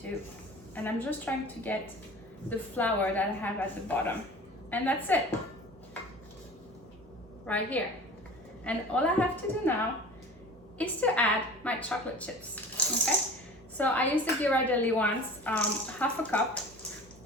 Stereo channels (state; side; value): normal; both; correlation 0.39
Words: to, and I'm just trying to get the flour that I have at the bottom, and that's it. Right here. And all I have to do now is to add my chocolate chips, okay? So I use the Ghirardelli ones, half a cup,